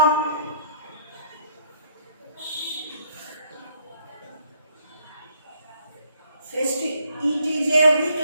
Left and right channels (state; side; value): inverted; both; correlation -0.67